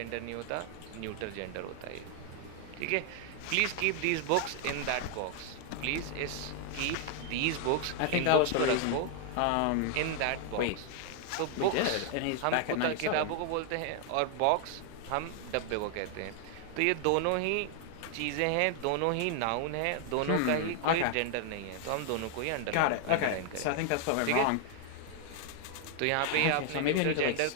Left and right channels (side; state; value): both; different; correlation 0.00